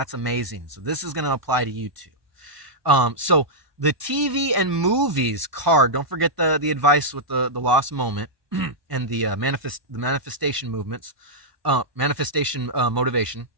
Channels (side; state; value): left; late; 1.2 ms